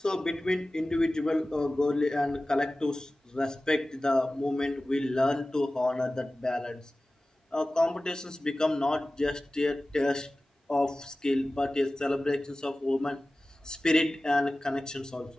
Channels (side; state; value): both; normal; correlation 0.97